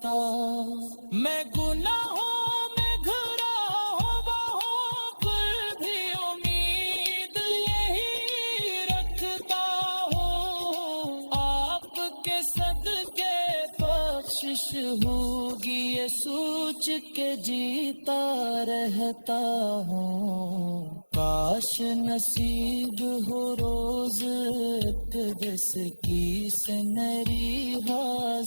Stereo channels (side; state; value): both; inverted; correlation -1.00